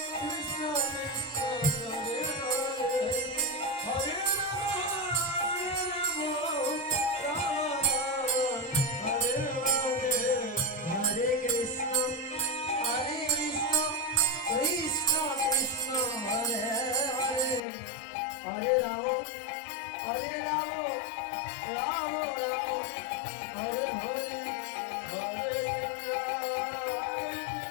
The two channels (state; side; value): drops out; right; at 17.6 s